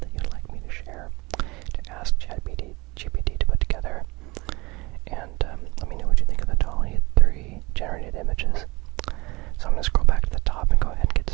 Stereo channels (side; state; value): left; quieter; 23.9 dB